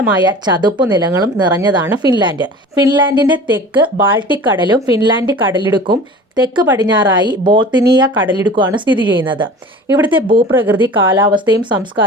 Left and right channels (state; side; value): normal; both; correlation 0.40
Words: ചതുപ്പ് നിലങ്ങളും നിറഞ്ഞതാണ് ഫിൻലാൻഡ്. ഫിൻലാൻഡിന്റെ തെക്ക് ബാൾട്ടിക് കടലും ഫിൻലാൻഡ് കടലിടുക്കും തെക്ക് പടിഞ്ഞാറായി ബോൾത്തിനിയ കടലിടുക്കുമാണ് സ്ഥിതി ചെയ്യുന്നത്. ഇവിടുത്തെ ഭൂപ്രകൃതി, കാലാവസ്ഥയും